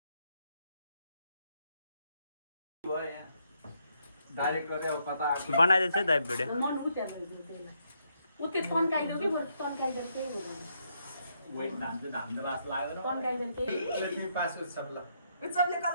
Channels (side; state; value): both; inverted; correlation -0.76